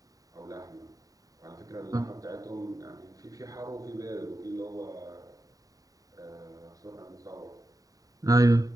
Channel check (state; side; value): late; left; 0.17 ms